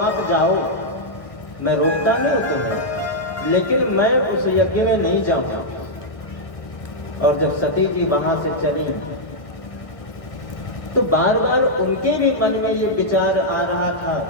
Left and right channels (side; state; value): right; late; 1.1 ms